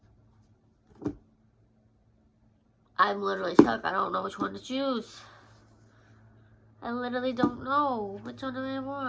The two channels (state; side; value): identical; both; correlation 1.00